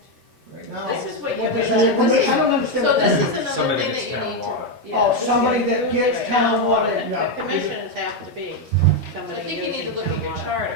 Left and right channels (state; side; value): normal; both; correlation 0.05